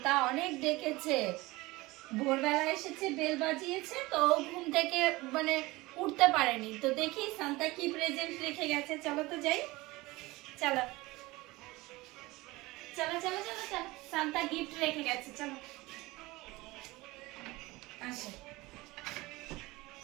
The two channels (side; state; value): left; quieter; 21.0 dB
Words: অনেক ডেকেছে। ভোরবেলা এসেছে, বেল বাজিয়েছে, তো ঘুম থেকে মানে উঠতে পারেনি। তো দেখি সান্তা কি প্রেজেন্ট রেখে গেছে। চলো তো যাই, চলো চলো চলো চলো চলো। সান্তা গিফট রেখে গেছে, চলো আসো।